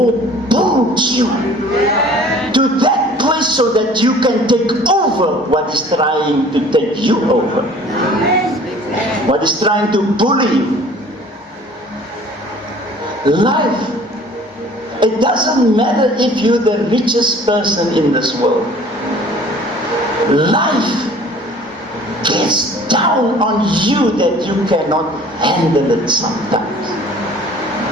builds you to that place so that you can take over what is trying to take you over. What is trying to bully you. Life. It doesn't matter if you're the richest person in this world. Life gets down on you that you cannot handle it sometimes.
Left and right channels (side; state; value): both; normal; correlation 0.50